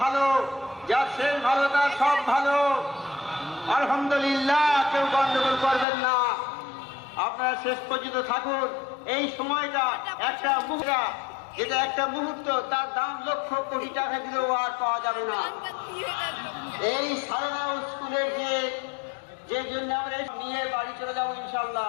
যার শেষ ভালো তার সব ভালো। আলহামদুলিল্লাহ, কেউ গন্ডগোল করবেন না, আপনারা শেষ পর্যন্ত থাকুন। এই সময়টা একটা মুহূর্ত, যেটা একটা মুহূর্ত, তার দাম লক্ষ কোটি টাকা দিলেও আর পাওয়া যাবে না। এই সালানা স্কুলের যে জন্য আমরা নিয়ে বাড়ি চলে যাবো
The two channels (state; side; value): drops out; right; at 5.9 s